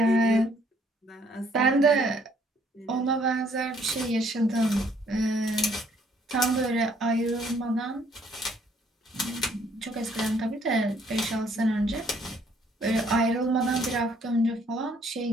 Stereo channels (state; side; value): normal; both; correlation 0.65